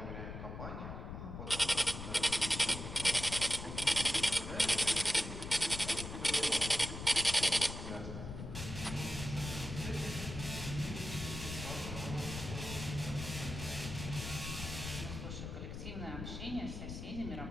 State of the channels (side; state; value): left; noise; rumble, 7 dB below the sound